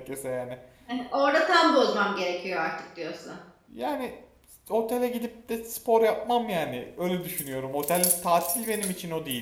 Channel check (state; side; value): identical; both; correlation 1.00